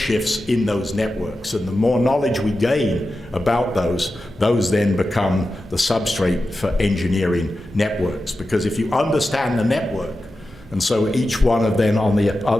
in those networks. And the more knowledge we gain about those then become the substrate for engineering networks. Because if you understand the network, And so each one of them on the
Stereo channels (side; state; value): both; normal; correlation 0.92